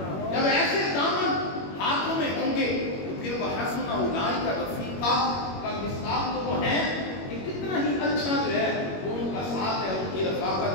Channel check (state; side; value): late; right; 21 ms